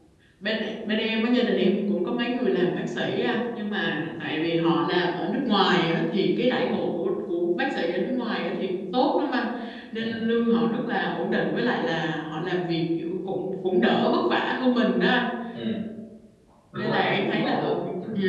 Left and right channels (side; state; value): both; identical; correlation 1.00